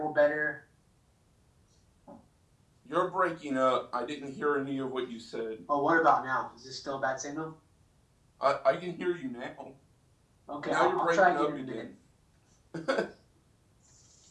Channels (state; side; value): identical; both; correlation 1.00